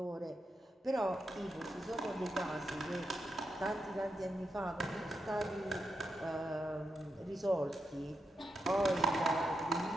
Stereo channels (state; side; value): normal; both; correlation 0.85